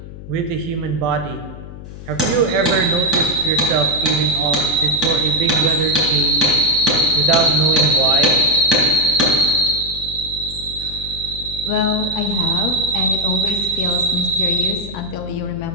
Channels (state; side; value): noise; left; hum, 13 dB below the sound